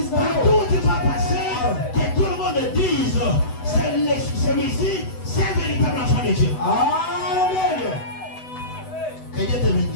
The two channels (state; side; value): late; right; 8.0 ms